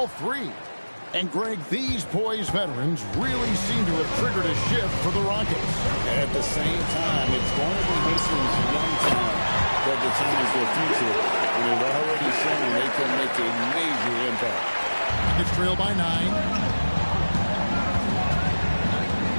3. And, Greg, these poised veterans really seem to have triggered a shift for the Rockets. At the same time, it's going to be Houston's young talent that determines their future. And they've already shown they can make a major impact. It's trailed by 9.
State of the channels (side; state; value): both; inverted; correlation -1.00